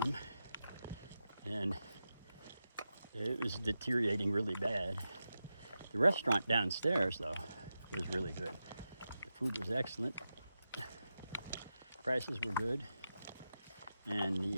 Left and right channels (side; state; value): both; inverted; correlation -0.90